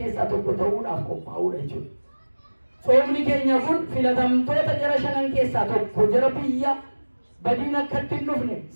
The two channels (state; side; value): inverted; both; correlation -1.00